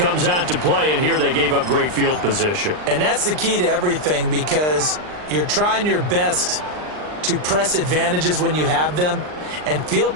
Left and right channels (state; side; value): late; left; 39 ms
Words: out to play, and here they gave up great field position. And that's the key to everything, because you're trying your best to press advantages when you have them, and